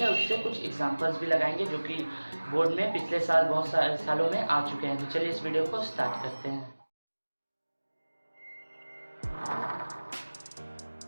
है उससे कुछ एग्जांपल्स भी लगाएंगे जो कि बोर्ड में पिछले साल बहुत सारे सालों में आ चुके हैं। तो चलिए इस वीडियो को स्टार्ट करते हैं।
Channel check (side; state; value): both; inverted; correlation -1.00